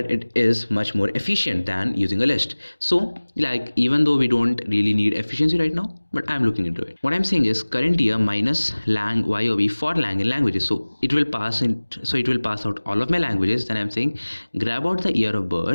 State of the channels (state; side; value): inverted; both; correlation -1.00